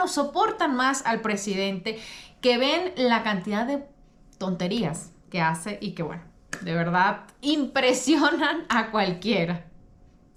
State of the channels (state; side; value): identical; both; correlation 1.00